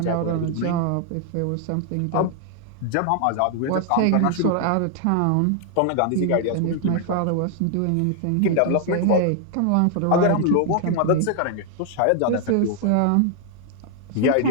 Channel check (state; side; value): different; both; correlation 0.00